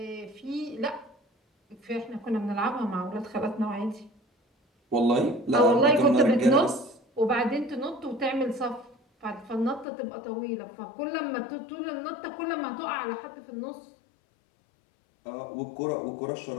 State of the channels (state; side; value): drops out; right; at 9.9 s